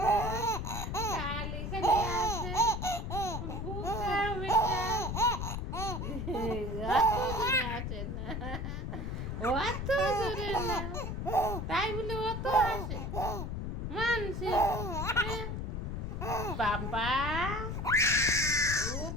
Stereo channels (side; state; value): left; noise; rumble, 3 dB below the sound